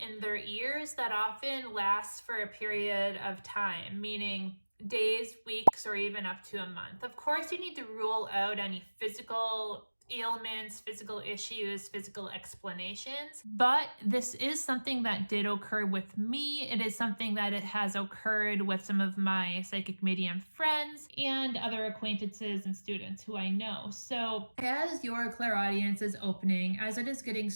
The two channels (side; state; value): both; inverted; correlation -1.00